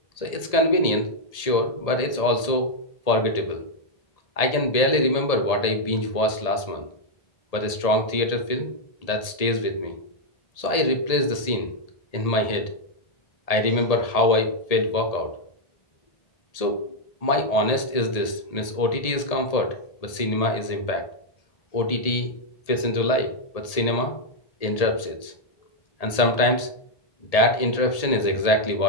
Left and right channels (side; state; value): right; late; 1.8 ms